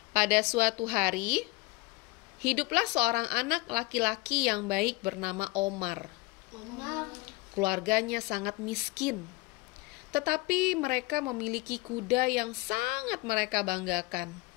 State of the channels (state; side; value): quieter; right; 22.2 dB